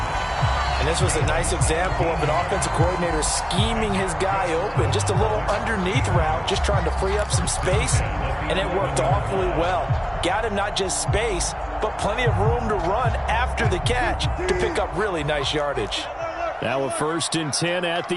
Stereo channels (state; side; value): identical; both; correlation 1.00